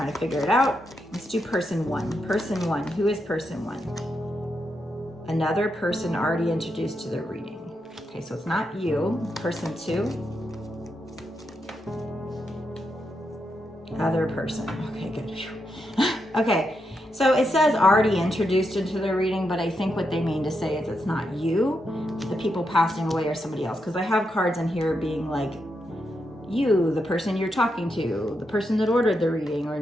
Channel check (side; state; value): both; normal; correlation 0.83